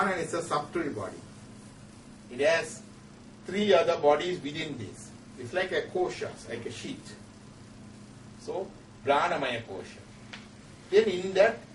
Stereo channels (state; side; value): identical; both; correlation 1.00